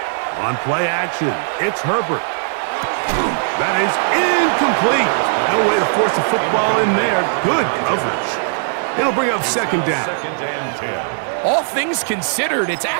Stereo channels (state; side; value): silent; left; digital silence